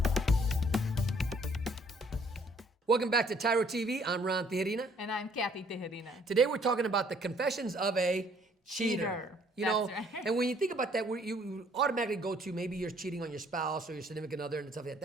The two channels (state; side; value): normal; both; correlation 0.62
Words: Welcome back to TYRO TV. I'm Ron Tijerina. And I'm Cathy Tijerina. Today we're talking about the confessions of a cheater. You know, That's right. and when you think about that, you automatically go to maybe you're cheating on your spouse or your significant other and stuff like that.